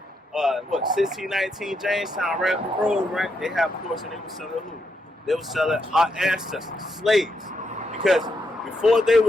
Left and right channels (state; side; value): normal; both; correlation 0.80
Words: 1619 Jamestown, right up the road, right? They have ports and they were selling who? They were selling our ancestors, slaves. Because before they